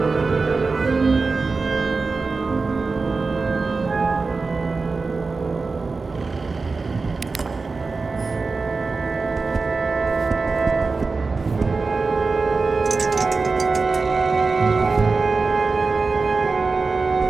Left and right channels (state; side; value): quieter; left; 4.1 dB